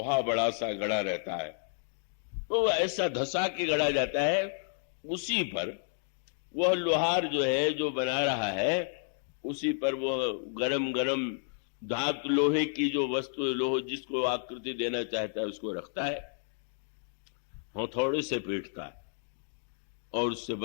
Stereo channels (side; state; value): right; silent; digital silence